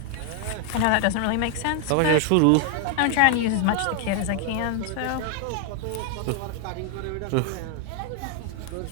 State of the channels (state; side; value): different; both; correlation 0.00